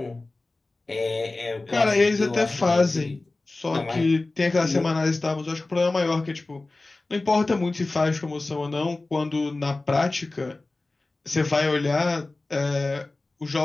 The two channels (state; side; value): quieter; right; 3.2 dB